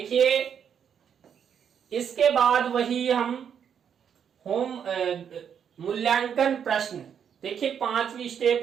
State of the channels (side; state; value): left; quieter; 8.0 dB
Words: इसके बाद वही हम होम मूल्यांकन प्रश्न। देखिए 5वीं